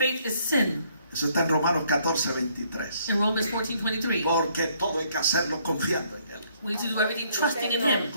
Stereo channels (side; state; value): both; inverted; correlation -0.66